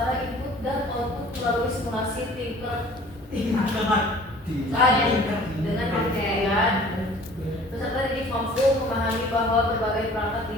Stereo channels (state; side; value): normal; both; correlation 0.49